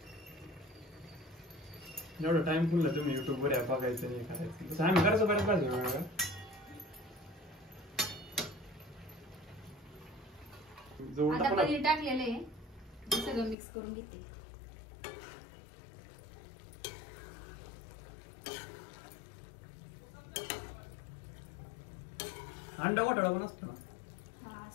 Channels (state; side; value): drops out; right; at 13.6 s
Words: एवढा टाइम फुलला तुम्ही युट्यूब वर बघायचं नाही करायचं. तसं आम्ही करायचो बऱ्याच भाज्या वेगळ्या. आता पनीर टाकलेलं आहे. सगळं मिक्स करून घेते. अंडा घोटाळा पण असतो ना. हा